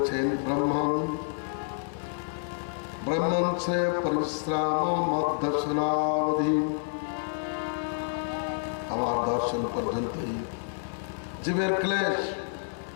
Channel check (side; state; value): right; silent; digital silence